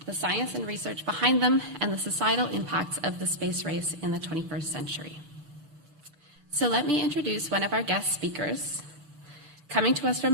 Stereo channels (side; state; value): left; late; 6.1 ms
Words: the science and research behind them, and the societal impacts of the space race in the 21st century. So let me introduce one of our guest speakers. Coming to us